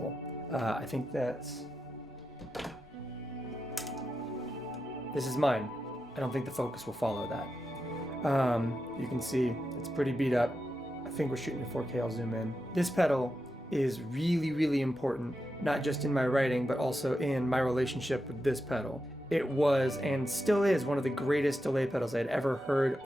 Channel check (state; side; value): normal; both; correlation 0.88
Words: I think this is mine. I don't think the focus will follow that. You can see it's pretty beat up. I think we're shooting in 4K, I'll zoom in. This pedal is really, really important, not just in my writing, but also in my relationship with this pedal. It was, and still is, one of the greatest delay pedals I'd ever heard